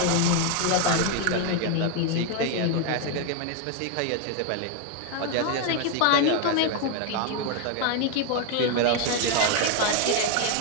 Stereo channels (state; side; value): different; both; correlation 0.01